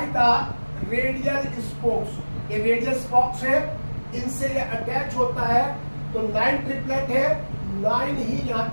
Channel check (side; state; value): both; inverted; correlation -1.00